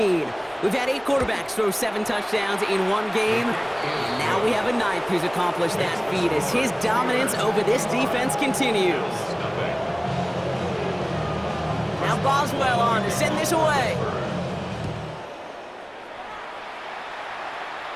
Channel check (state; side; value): identical; both; correlation 1.00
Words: We've had 8 quarterbacks throw 7 touchdowns in one game. And now we have a 9th who's accomplished that feat as his dominance over this defense continues. Now Boswell on to send this away.